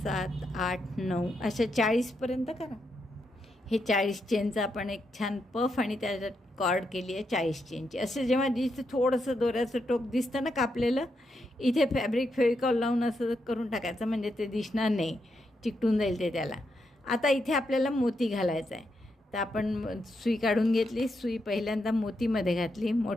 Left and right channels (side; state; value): both; normal; correlation 0.82